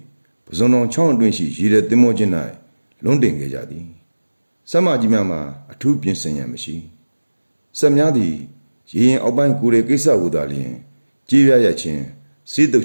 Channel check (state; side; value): inverted; both; correlation -1.00